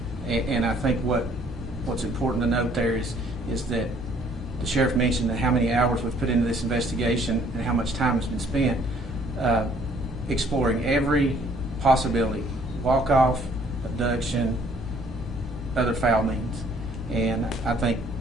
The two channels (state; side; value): normal; both; correlation 0.61